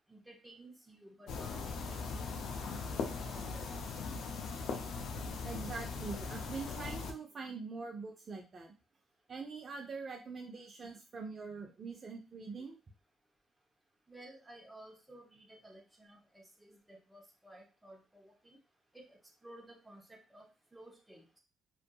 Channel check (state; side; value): normal; both; correlation 0.69